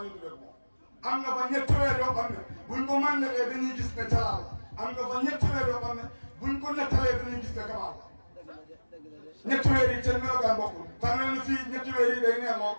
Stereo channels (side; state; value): both; inverted; correlation -1.00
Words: yi du moom am nga fa ñetti weer yoo xam ne buñ ko màndalee dañuy gis ne jalaal la am nga fa ñetti weer yoo xam ne buñ ko nettalee dañuy gis ne kamaal la ñetti weer yi seen melokaan bokkul tax na fii ñetti weer yi day neex lool